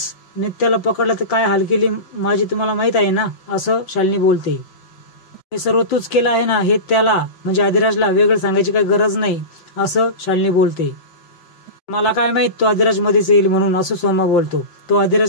नित्याला पकडलं तर काय हाल केली माझी तुम्हाला माहित आहे ना असं शालिनी बोलते. हे सर्व तूच केलं आहे ना, हे त्याला म्हणजे अधिराजला वेगळं सांगायची काही गरज नाही असं शालिनी बोलते. मला काय माहित तो अधिराज मध्येच येईल म्हणून असं सोमा बोलतो. तो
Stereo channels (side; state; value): right; late; 5.9 ms